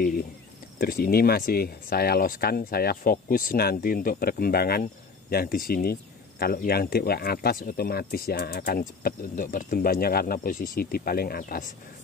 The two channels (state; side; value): quieter; right; 4.8 dB